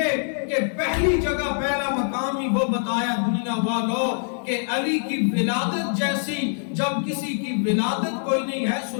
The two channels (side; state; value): right; silent; 63 dB below the other